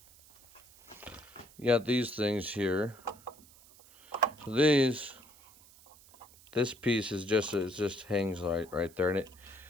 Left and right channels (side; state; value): right; noise; hiss, 24 dB below the sound